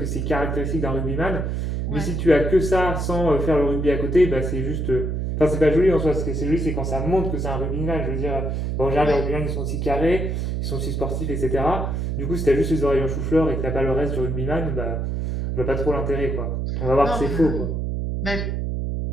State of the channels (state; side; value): noise; right; hum, 1 dB below the sound